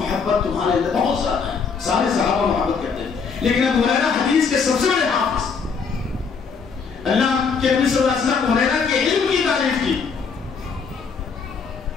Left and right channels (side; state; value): right; quieter; 5.6 dB